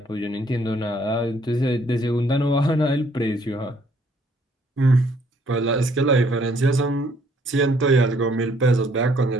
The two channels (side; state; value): both; normal; correlation 0.64